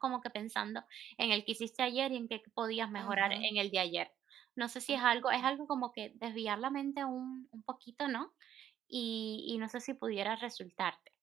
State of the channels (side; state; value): left; quieter; 10.4 dB